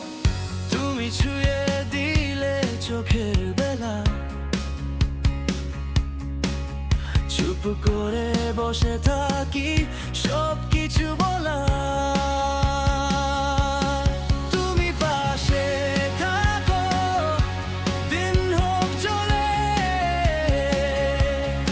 তুমি ছুঁয়ে দিলে চোখের বেলা, চুপ করে বসে থাকি সব কিছু বলা। তুমি পাশে থাকো, দিন হোক চলে,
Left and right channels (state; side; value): identical; both; correlation 1.00